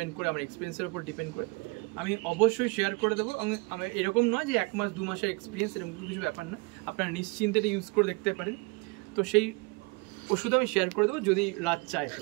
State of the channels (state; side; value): quieter; left; 28.7 dB